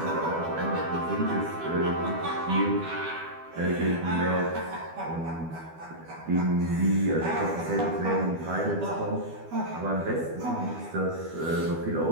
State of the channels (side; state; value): left; late; 12 ms